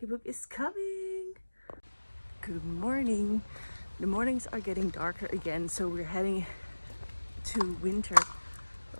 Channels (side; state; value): both; inverted; correlation -1.00